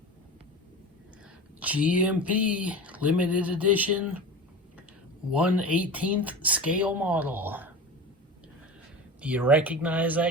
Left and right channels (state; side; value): normal; both; correlation 0.30